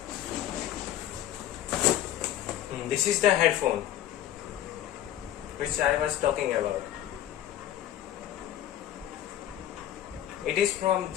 This is the headphone which I was talking about. It is from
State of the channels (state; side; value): quieter; right; 12.1 dB